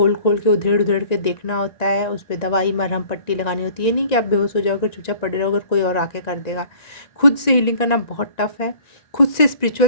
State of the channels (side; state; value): right; late; 1.9 ms